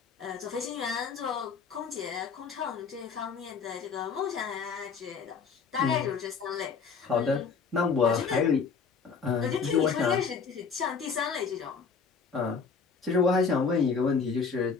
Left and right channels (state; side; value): quieter; right; 5.5 dB